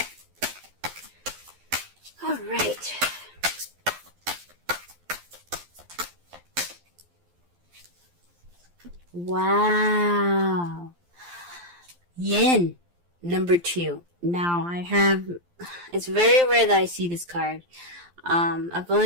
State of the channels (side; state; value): left; late; 12 ms